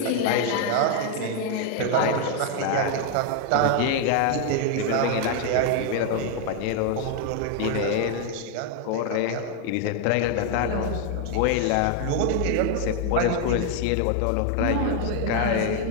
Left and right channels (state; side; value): different; both; correlation 0.00